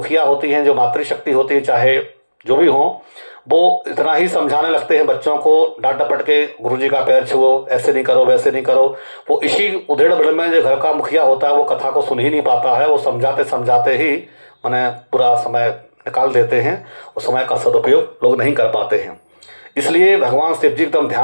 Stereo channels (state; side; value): inverted; both; correlation -1.00